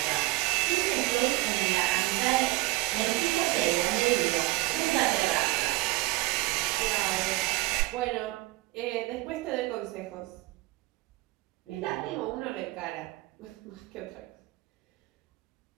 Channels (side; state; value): left; quieter; 19.7 dB